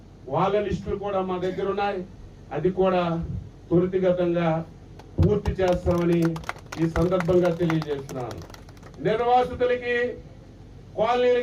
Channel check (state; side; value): identical; both; correlation 1.00